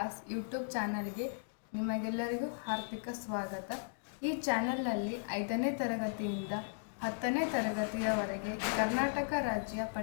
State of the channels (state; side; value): silent; right; digital silence